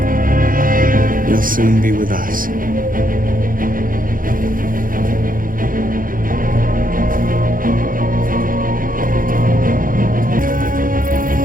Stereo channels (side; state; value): left; late; 0.40 ms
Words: You'll soon be with us.